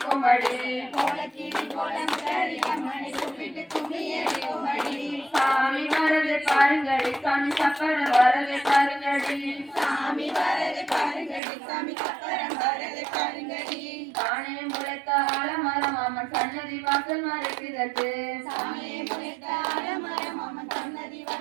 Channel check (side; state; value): left; drops out; at 11.4 s